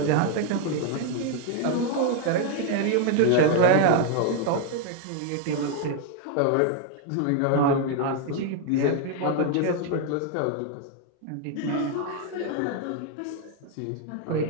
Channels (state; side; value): different; both; correlation 0.00